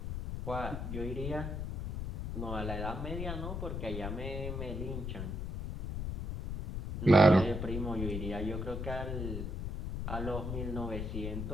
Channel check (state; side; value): noise; left; rumble, 4 dB below the sound